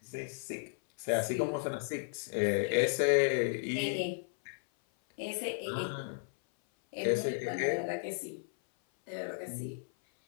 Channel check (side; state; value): right; silent; 55 dB below the other